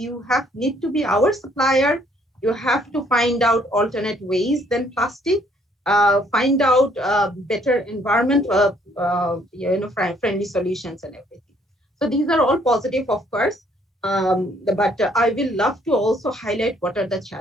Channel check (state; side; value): normal; both; correlation 0.65